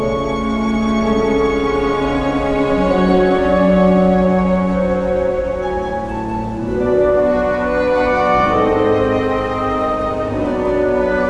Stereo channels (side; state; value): both; identical; correlation 1.00